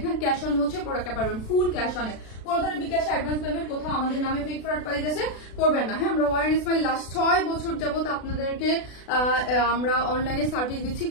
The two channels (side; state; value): right; late; 36 ms